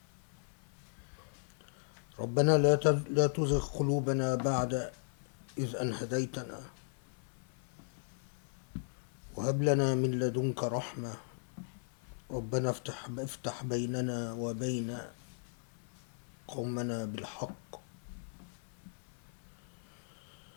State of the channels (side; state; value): right; silent; 53 dB below the other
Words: ربنا لا تزغ قلوبنا بعد إذ أن هديتنا وهب لنا من لدنك رحمة. ربنا افتح بيننا وبين قومنا بالحق